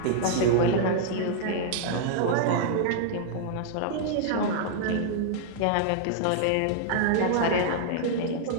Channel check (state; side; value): different; both; correlation -0.01